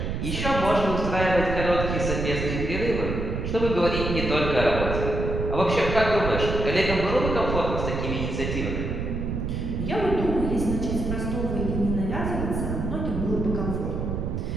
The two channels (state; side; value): noise; right; rumble, 3 dB below the sound